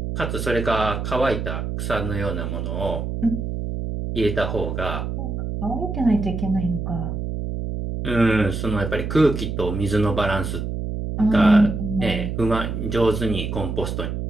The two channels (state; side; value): noise; right; hum, 3 dB below the sound